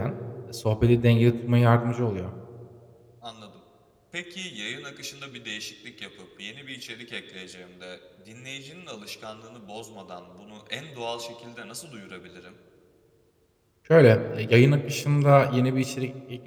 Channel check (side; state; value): both; identical; correlation 1.00